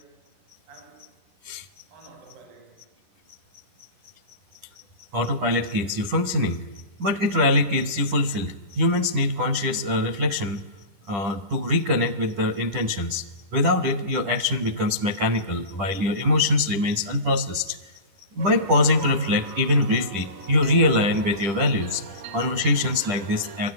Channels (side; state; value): left; late; 10 ms